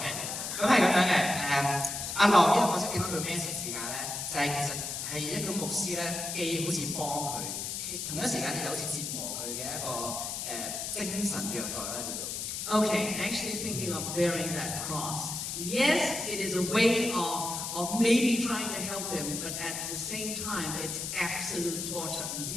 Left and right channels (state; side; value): noise; left; hiss, 4 dB below the sound